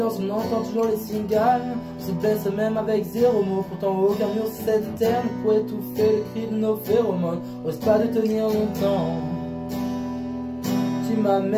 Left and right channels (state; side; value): identical; both; correlation 1.00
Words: on entend toujours les cigales. On se blesse même avec zéro mot. Pourtant aucun mur cette terre ne pourrait étouffer les cris de nos phéromones. Ose pas de tenir longtemps. Tu m'as